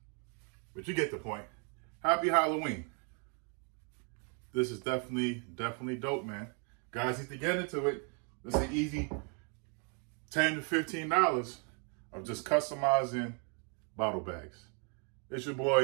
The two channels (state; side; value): quieter; left; 38.2 dB